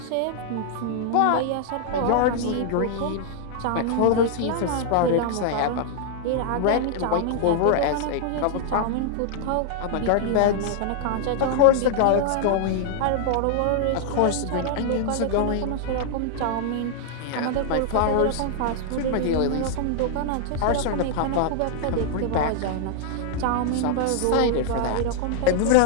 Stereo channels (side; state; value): both; different; correlation -0.01